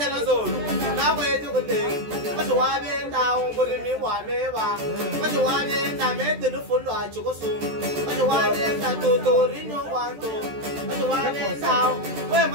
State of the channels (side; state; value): left; late; 14 ms